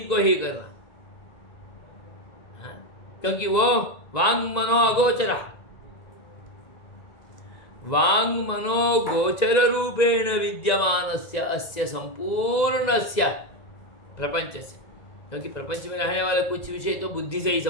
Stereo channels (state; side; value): late; right; 2.0 ms